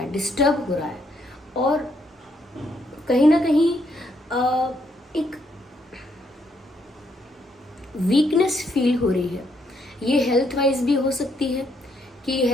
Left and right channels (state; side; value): normal; both; correlation 0.74